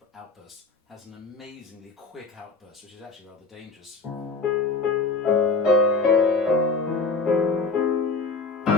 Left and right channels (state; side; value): quieter; right; 4.1 dB